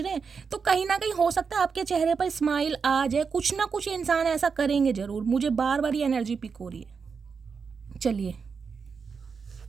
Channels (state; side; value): quieter; left; 5.6 dB